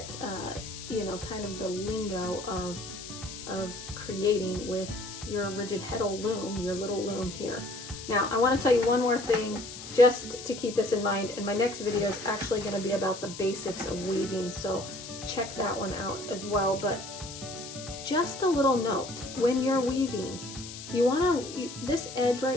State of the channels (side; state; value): left; noise; hiss, 12 dB below the sound